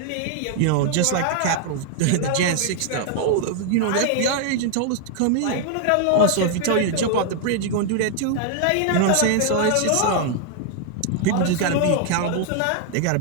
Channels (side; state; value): both; different; correlation 0.00